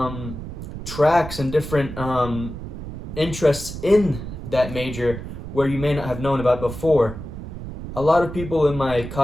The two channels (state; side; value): noise; right; rumble, 9 dB below the sound